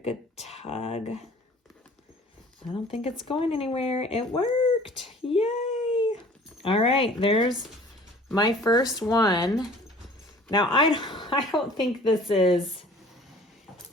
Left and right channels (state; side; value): normal; both; correlation 0.49